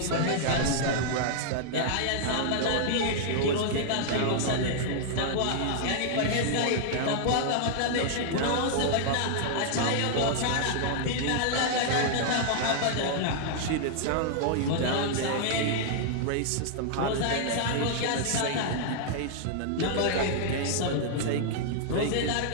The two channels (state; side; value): different; both; correlation -0.01